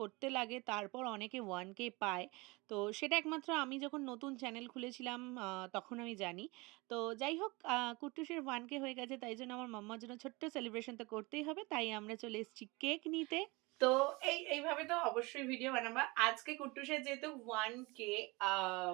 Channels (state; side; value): quieter; left; 25.1 dB